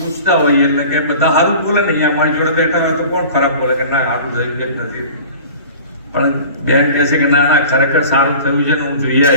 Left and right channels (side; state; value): both; inverted; correlation -0.41